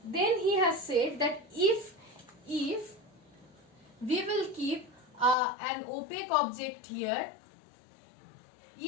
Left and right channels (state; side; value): drops out; right; at 5.4 s